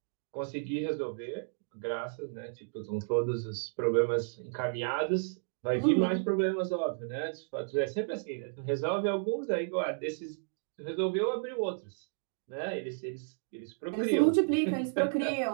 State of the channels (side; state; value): left; silent; digital silence